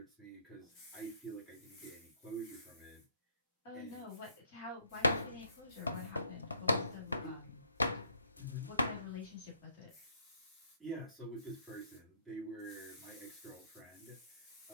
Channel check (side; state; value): both; inverted; correlation -0.66